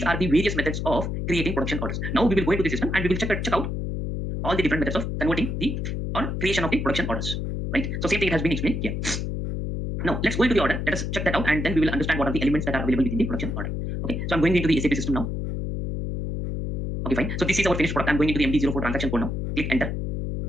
are the various methods of creating production orders. Now we will go into the system and we will check out all the different methods of converting or creation of the production orders. Right? So same thing has been explained here. Now let's go into the order. Let us check that out, and then we will understand what are the elements that are available within the production order. Okay, so I'm going into the SAP system now. Okay, fine. So this is our finished product. I'm going into the MD04 transaction code now. Click enter.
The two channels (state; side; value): noise; left; hum, 2 dB below the sound